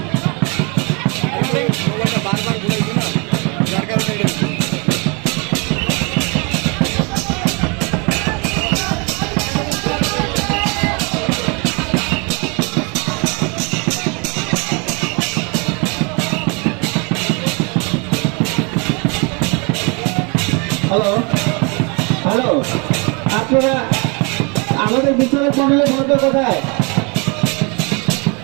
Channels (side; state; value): left; quieter; 31.9 dB